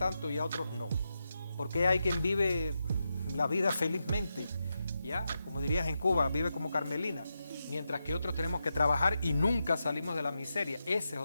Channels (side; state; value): both; inverted; correlation -0.87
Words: y a otros no? ¿Por qué hay quien vive la vida felizmente? Ya, como dirías en Cuba, vive como Carmelina, mientras que otros tenemos que trabajar y nunca salimos de la miseria. Ese es